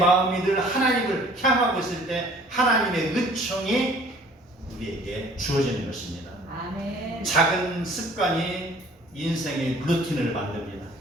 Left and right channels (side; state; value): both; normal; correlation 0.52